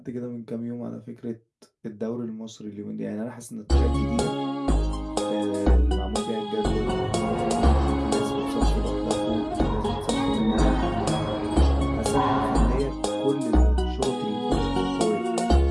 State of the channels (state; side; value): identical; both; correlation 1.00